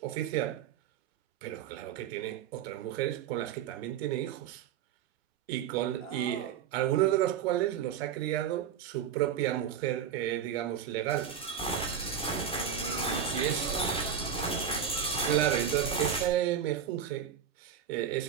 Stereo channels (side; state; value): left; quieter; 8.5 dB